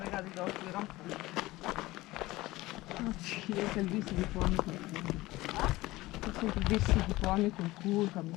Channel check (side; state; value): right; quieter; 18.9 dB